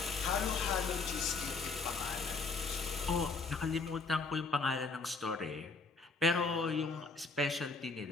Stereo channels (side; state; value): right; quieter; 4.2 dB